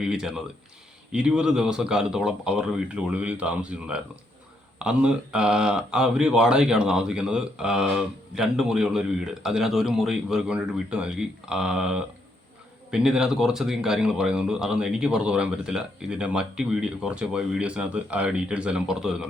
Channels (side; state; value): both; normal; correlation 0.75